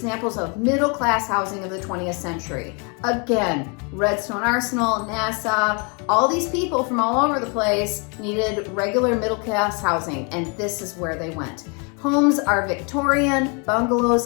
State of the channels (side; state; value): right; quieter; 34.3 dB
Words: of middle-class housing of the 20th century. Again, Redstone Arsenal, NASA, all these people from all over the place needed regular middle-class housing, and this is where they went. Homes are Victorian,